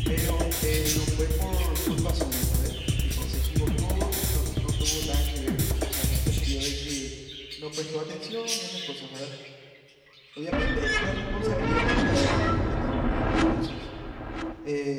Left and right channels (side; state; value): both; identical; correlation 1.00